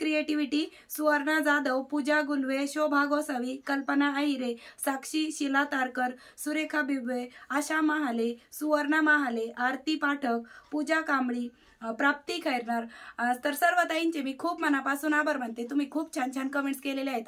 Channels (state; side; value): identical; both; correlation 1.00